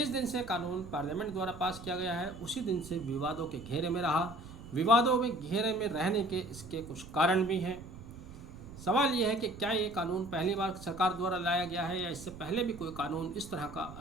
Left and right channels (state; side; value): noise; right; rumble, 15 dB below the sound